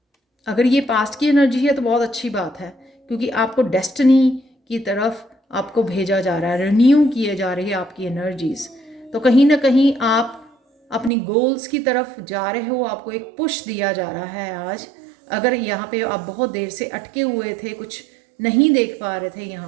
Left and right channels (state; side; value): drops out; left; at 11.1 s